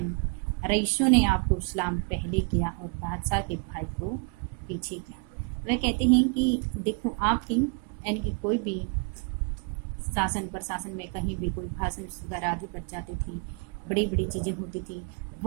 रईसों ने आपको सलाम पहले किया और बादशाह के भाई को पीछे किया। वह कहते हैं कि देखो आपकी यानी कि कोई भी शासन प्रशासन में कहीं भी कोई भाषण वगैरह आदि पर जाती थी, बड़ी बड़ी चीज़ें होती थी,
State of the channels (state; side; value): quieter; left; 36.7 dB